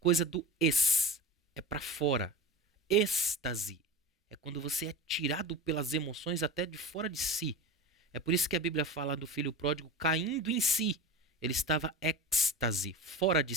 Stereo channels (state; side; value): normal; both; correlation 0.31